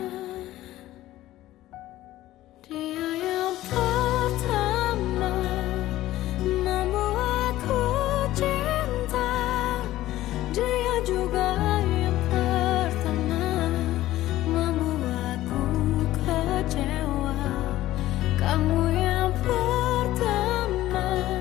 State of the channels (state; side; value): quieter; right; 15.2 dB